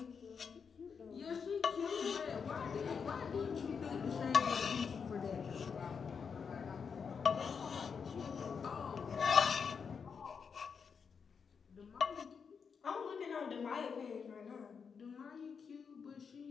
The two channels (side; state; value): right; quieter; 6.1 dB